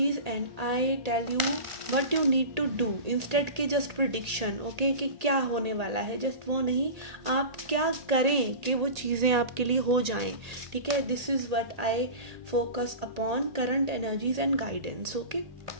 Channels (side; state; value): left; late; 1.8 ms